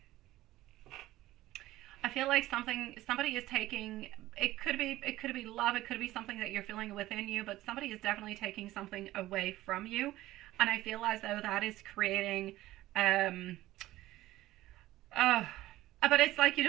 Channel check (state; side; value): quieter; left; 16.1 dB